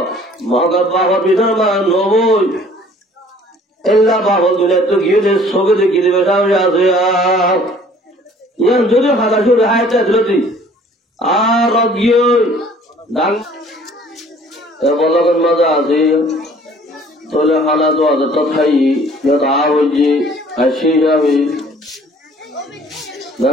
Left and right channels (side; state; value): both; normal; correlation 0.54